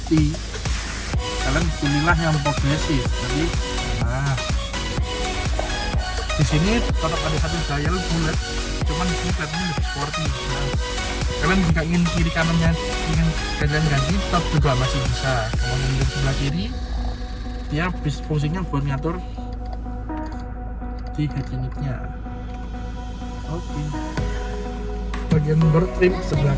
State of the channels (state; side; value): identical; both; correlation 1.00